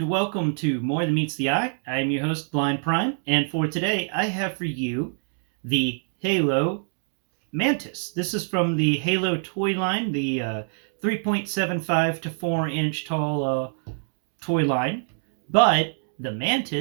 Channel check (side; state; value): left; silent; digital silence